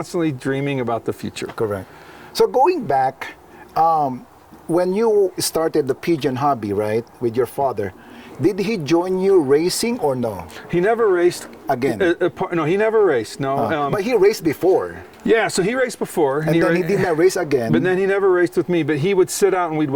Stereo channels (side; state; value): both; identical; correlation 1.00